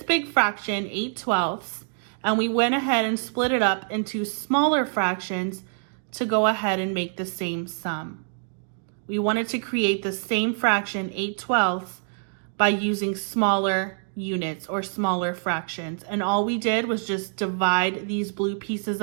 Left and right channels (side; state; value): left; silent; 61 dB below the other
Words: big fraction, 8/12, and we went ahead and split it up into smaller fractions to go ahead and make the same sum. We wanted to create the same fraction, 8/12, by using smaller units or smaller fractions. And all we did was just divide these blue pieces